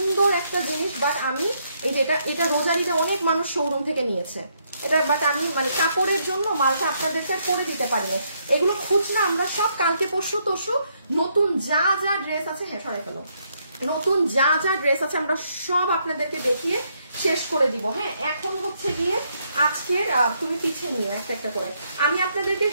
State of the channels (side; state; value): both; inverted; correlation -0.74